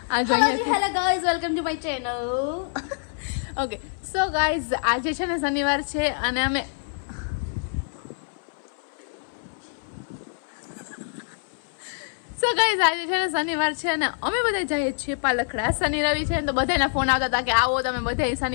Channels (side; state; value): right; silent; 61 dB below the other